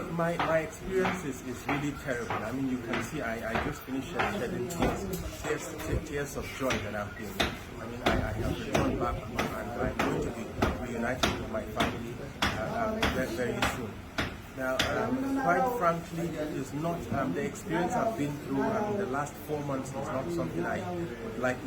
my experience is really terrible. I mean, you can see I just finished shedding tears of joy that I've been. I mean, I have returned back and I'm going to be reunited with my family very soon. Now, quite frankly, it's not the experience I've been through. The last 4 months is not something I would like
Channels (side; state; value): both; identical; correlation 1.00